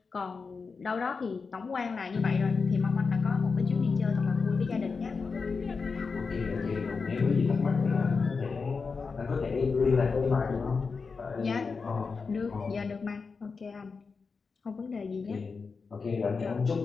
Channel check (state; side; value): quieter; right; 4.8 dB